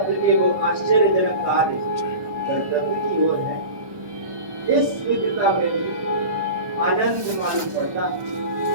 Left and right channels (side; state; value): left; late; 1.2 ms